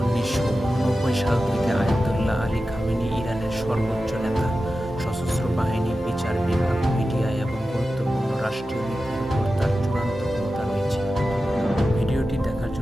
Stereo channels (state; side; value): normal; both; correlation 0.93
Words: সাল থেকে আয়াতুল্লাহ আলী খামেনি ইরানের সর্বোচ্চ নেতা। সশস্ত্র বাহিনী, বিচার বিভাগ, মিডিয়া এবং গুরুত্বপূর্ণ রাষ্ট্রীয় নীতির উপর তার চূড়ান্ত ক্ষমতা রয়েছে। ভিডিওটি দেখার